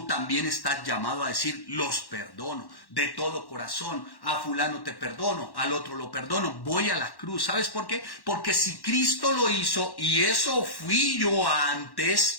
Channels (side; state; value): right; late; 1.1 ms